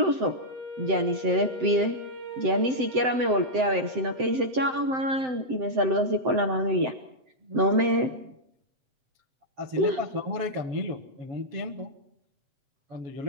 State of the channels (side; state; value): left; late; 7.8 ms